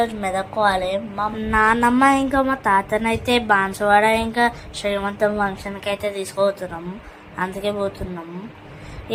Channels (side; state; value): both; identical; correlation 1.00